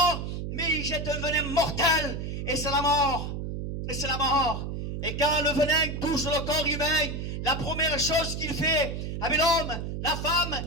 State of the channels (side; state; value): right; noise; hum, 5 dB below the sound